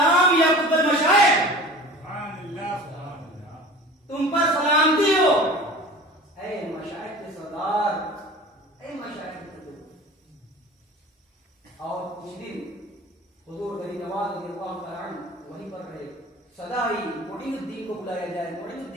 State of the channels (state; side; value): normal; both; correlation 0.40